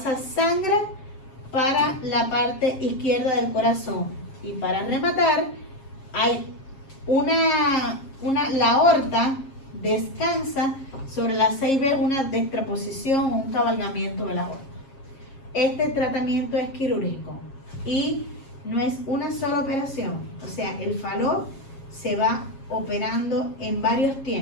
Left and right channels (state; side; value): late; right; 7.4 ms